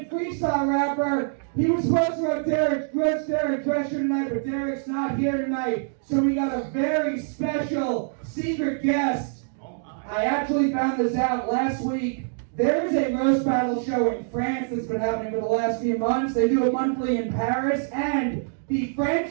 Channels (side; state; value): left; silent; digital silence